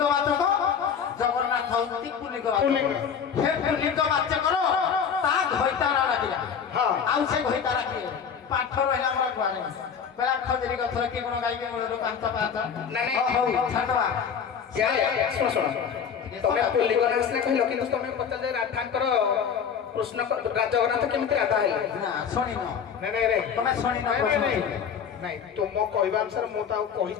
ବାଚକ, ଜଗନ୍ନାଥ ହଉଛନ୍ତି ପୁଲ୍ଲିଙ୍ଗ ବାଚକ। ସେ ପୁଲ୍ଲିଙ୍ଗ ବାଚକର ତା ଘଇତାରା ଡାକିଲା। ଆଉ ସେ ଘଇତାରା କିଏ? ପାଠ ରହିଲା ଆମର କୁଆଡେ କହିଲା ଖଜୁରୀ ଗଛର କି ଗୁଣ ଗାଇକି ମୂଳରୁ ପାଞ୍ଚ ପାଞ୍ଚ। ଛାଡ଼ିଦବା। ଶୁଣ ତମେ ପୁଲ୍ଲିଙ୍ଗ ନାଁ ସିନା କହିଲ, କିନ୍ତୁ ତମେ ପଚାରିଲେ ରାଧାଙ୍କର କୃଷ୍ଣ ଜଗନ୍ନାଥ କେମିତି ରାଧା ହେଲେ। ଶୁଣିନ ତମେ ଶୁଣିନ? ନାଇଁ ତୁମ କହିବା ଅନୁସାରେ ମୁଁ ତ ଆଉ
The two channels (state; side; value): quieter; right; 7.2 dB